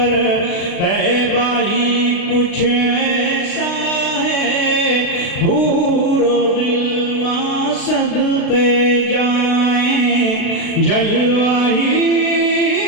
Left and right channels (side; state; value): right; late; 36 ms